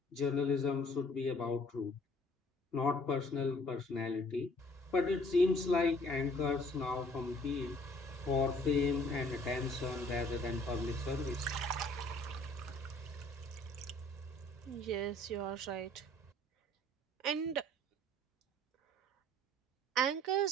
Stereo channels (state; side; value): normal; both; correlation 0.57